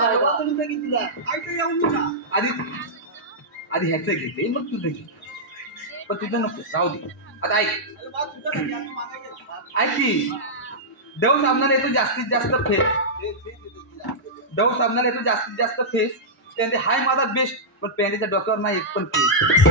आधी ह्याचं घेते मग तुझं घे पण तुझं नको राहू दे आता ऐक की डव साबणाला येतो जास्तीत जास्त फेस त्याने हाय माझा बेस्ट पण पॅन्टीच्या डोक्यावर नाही एक पण फेस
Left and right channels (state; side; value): normal; both; correlation -0.11